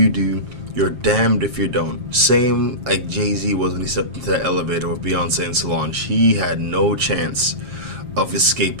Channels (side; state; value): left; late; 7.5 ms